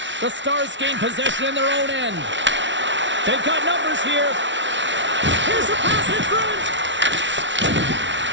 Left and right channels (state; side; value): late; left; 0.54 ms